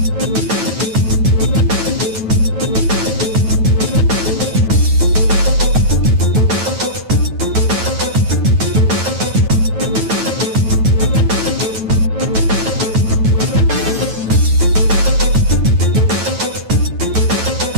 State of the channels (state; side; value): late; left; 9.2 ms